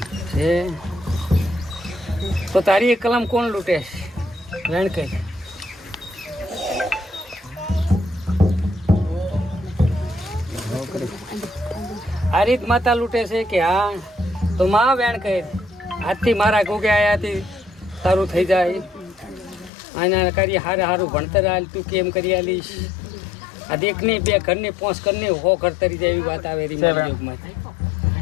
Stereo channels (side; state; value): right; drops out; at 19.7 s